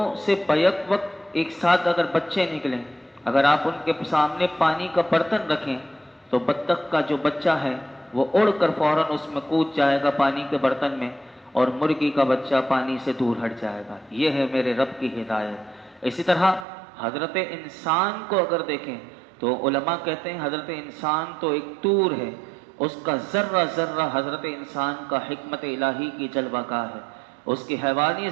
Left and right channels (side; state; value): left; drops out; at 16.7 s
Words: سے بیک وقت ایک ساتھ اگر بچے نکلیں، اگر آپ ان کے سامنے پانی کا برتن رکھیں تو بطخ کا جو بچہ ہے وہ اڑ کر فوراً اس میں کود جائے گا پانی کے برتن میں، اور مرغی کا بچہ پانی سے دور ہٹ جائے گا۔ یہ ہے میرے رب کی ہدایت۔ اسی طرح حضرت انسان کو اگر دیکھیں تو علماء کہتے ہیں حضرت انسان تو ایک طور ہے، اس کا ذرہ ذرہ حضرت انسان کا حکمت الہی کی جلوہ گاہ ہے۔ اس کی حیوانی